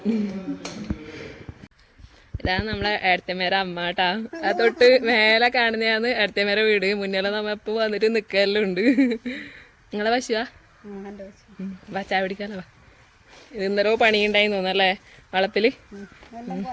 ഇതാണ് നമ്മളെ ഏട്ടത്തേമേരെ അമ്മ കേട്ടാ. ആ തൊട്ട് മേലെ കാണുന്നതാണ് ഏട്ടത്തേമേരെ വീട്. മുന്നിലെ നമ്മ ഇപ്പൊ വന്നിട്ട് നിൽക്കലെല്ലാം ഉണ്ട്. നിങ്ങളെ പശുവാ? വാ ചായ പിടിക്കാലോ. വാ. ഇത് ഇന്നലോ പണിയുണ്ടായി തോന്നല്ലേ വളപ്പില്.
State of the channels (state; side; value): identical; both; correlation 1.00